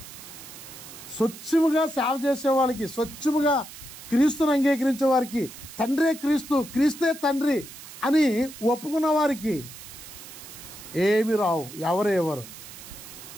స్వచ్ఛముగా సేవ చేసే వాళ్ళకి, స్వచ్ఛముగా క్రీస్తుని అంగీకరించే వారికి, తండ్రే క్రీస్తు, క్రీస్తే తండ్రి అని ఒప్పుకున్న వారికి ఏమి రావు, ఎవరు.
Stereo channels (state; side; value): noise; right; hiss, 15 dB below the sound